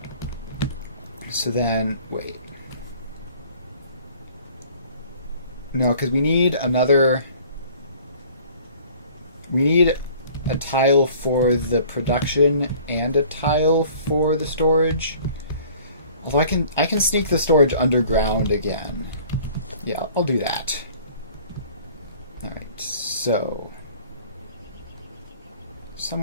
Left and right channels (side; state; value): both; inverted; correlation -0.51